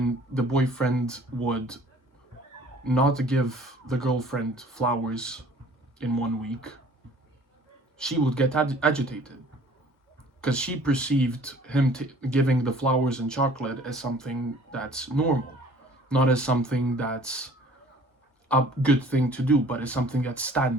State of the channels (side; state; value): both; normal; correlation 0.52